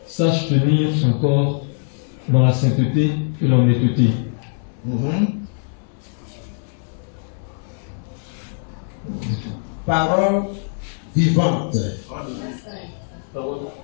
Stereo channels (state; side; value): silent; right; 65 dB below the other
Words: sache tenir son corps dans la sainteté et l'honnêteté. Parole vivante.